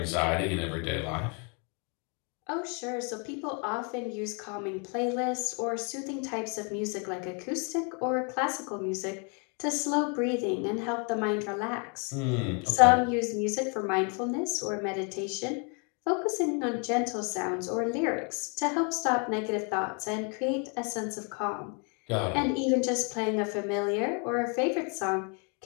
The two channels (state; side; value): quieter; right; 36.0 dB